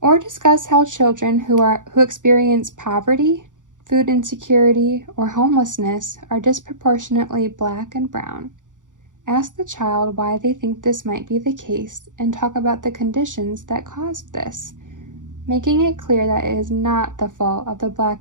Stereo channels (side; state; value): left; late; 0.87 ms